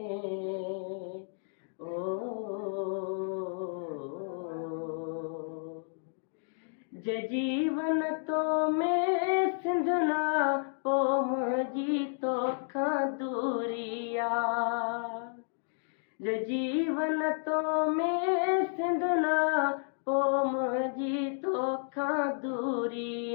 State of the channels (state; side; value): silent; right; digital silence